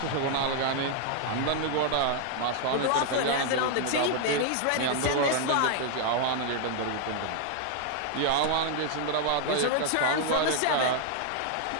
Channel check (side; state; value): both; different; correlation 0.00